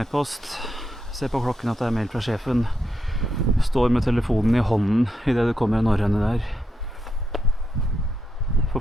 Se på klokken at det er mail fra sjefen. Står med telefonen i hånden i det det kommer en norrøne der.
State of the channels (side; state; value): both; normal; correlation 0.83